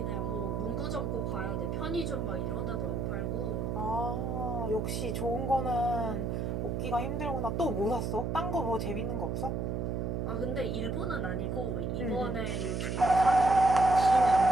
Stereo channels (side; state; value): right; noise; hum, 1 dB below the sound